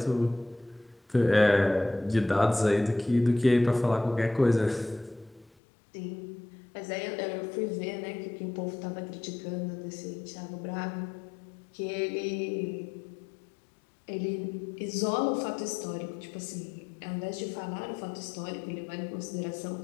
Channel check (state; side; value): drops out; right; at 5.5 s